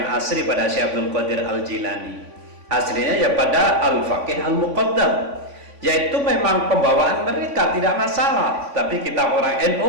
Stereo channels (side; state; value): left; late; 3.5 ms